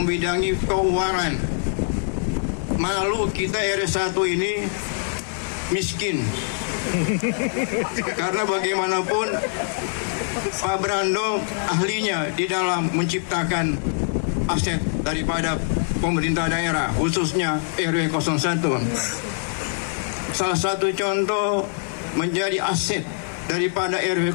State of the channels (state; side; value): silent; right; digital silence